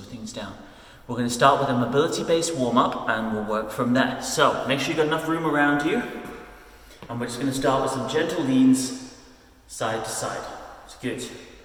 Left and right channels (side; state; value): both; identical; correlation 1.00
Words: things down. We're going to start with a mobility-based warm-up and we'll work from there. So make sure you've got enough room around you, and we're just going to start with some gentle leans side to side. It's good.